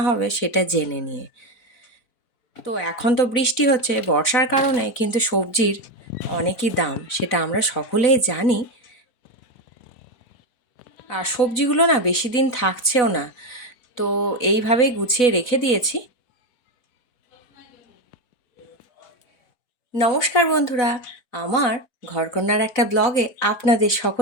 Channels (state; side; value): late; right; 4.0 ms